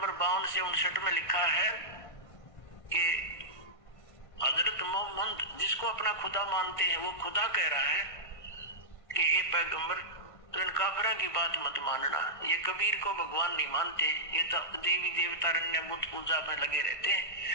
52 से 59 में लिखा है कि हजरत मोहम्मद जिसको अपना खुदा मानते हैं वो खुदा कह रहा है कि ये पैगंबर तो इन काफिरों की बात मत मानना, ये कबीर को भगवान नहीं मानते, ये तो देवी देवता अन्य बुत पूजा में लगे रहते हैं,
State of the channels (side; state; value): right; late; 1.5 ms